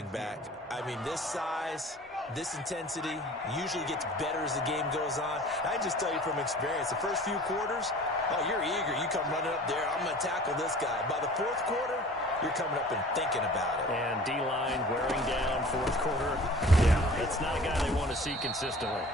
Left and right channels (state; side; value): normal; both; correlation 0.44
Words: back. I mean, this size, this intensity usually gets better as the game goes on. I just tell you from experience, the first few quarters, oh, you're eager. You come running up there, I'm going to tackle this guy. By the 4th quarter, you're coming up and thinking about it. And D-line wearing down 4th quarter. Yeah, it's not a guy they want to see consistently.